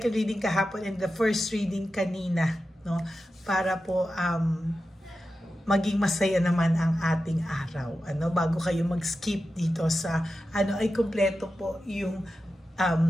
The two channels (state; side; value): normal; both; correlation 0.92